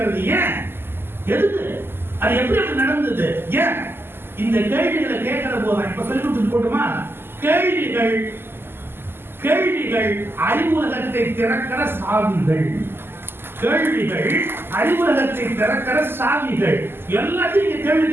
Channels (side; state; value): left; late; 0.11 ms